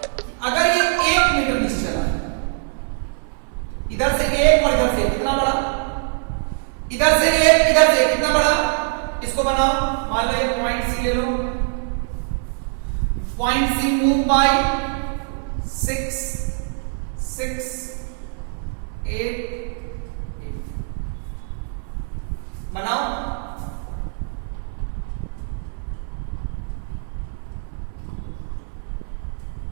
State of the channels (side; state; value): left; silent; 60 dB below the other